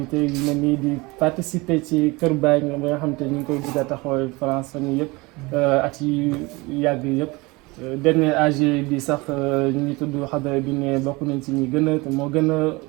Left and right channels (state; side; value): quieter; left; 24.0 dB